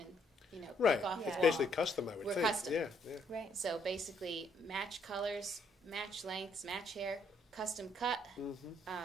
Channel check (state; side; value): normal; both; correlation 0.69